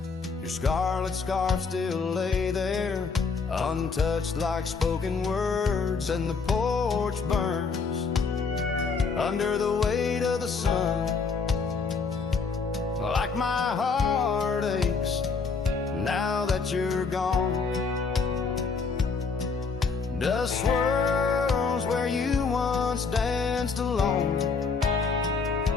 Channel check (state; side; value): quieter; right; 4.9 dB